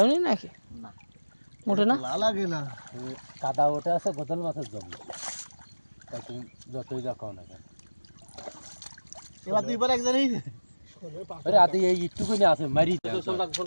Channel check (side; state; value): both; inverted; correlation -1.00